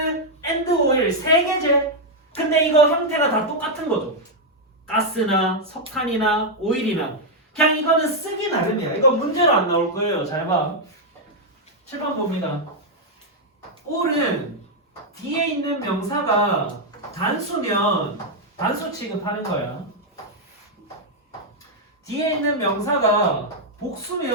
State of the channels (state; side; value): normal; both; correlation -0.01